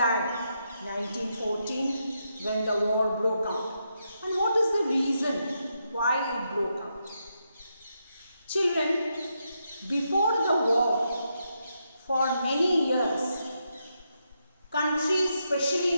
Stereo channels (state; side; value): inverted; both; correlation -0.82